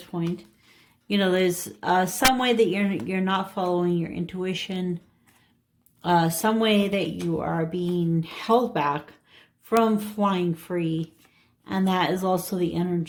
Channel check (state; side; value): identical; both; correlation 1.00